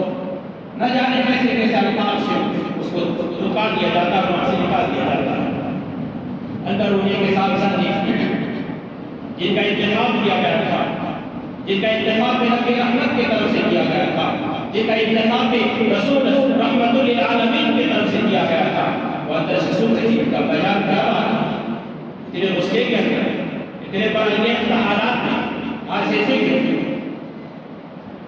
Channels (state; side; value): identical; both; correlation 1.00